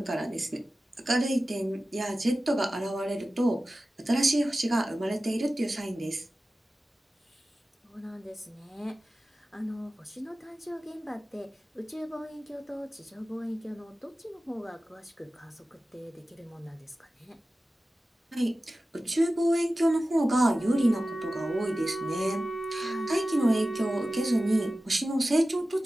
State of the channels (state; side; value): normal; both; correlation 0.95